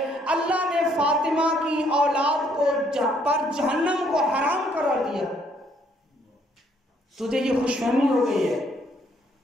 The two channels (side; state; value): both; normal; correlation 0.67